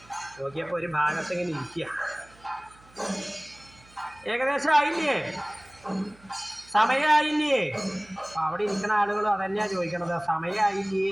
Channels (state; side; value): noise; right; hum, 26 dB below the sound